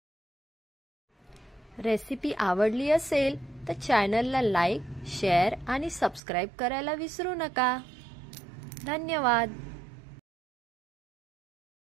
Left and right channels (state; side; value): drops out; left; at 6.2 s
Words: रेसिपी आवडली असेल तर चॅनलला लाईक, शेअर आणि सबस्क्राईब करायला विसरू नका। धन्यवाद।